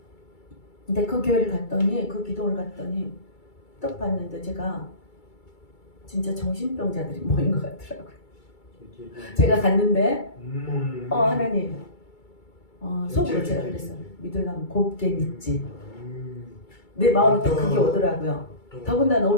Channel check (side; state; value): right; late; 2.3 ms